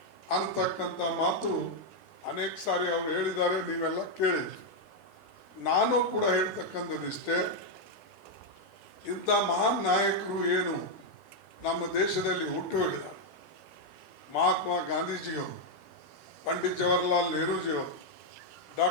ಅಂತಕ್ಕಂಥ ಮಾತು ಅನೇಕ ಸಾರಿ ಅವರು ಹೇಳಿದ್ದಾರೆ, ನೀವೆಲ್ಲ ಕೇಳಿದ್ರಿ. ನಾನು ಕೂಡ ಹೇಳ್ತಕ್ಕಂಥದ್ದಿಷ್ಟೇ, ಇಂಥ ಮಹಾನ್ ನಾಯಕರು ಏನು ನಮ್ಮ ದೇಶದಲ್ಲಿ ಹುಟ್ಟು ಹೋಗಿದ್ದಾರೆ, ಮಹಾತ್ಮ ಗಾಂಧೀಜಿಯವರು, ಪಂಡಿತ್ ಜವಾಹರ್ಲಾಲ್ ನೆಹರೂಜಿಯವರು,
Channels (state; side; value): normal; both; correlation 0.00